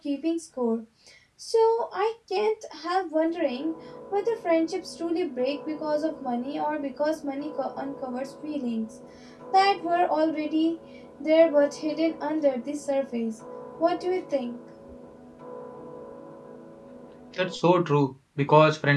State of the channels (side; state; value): both; identical; correlation 1.00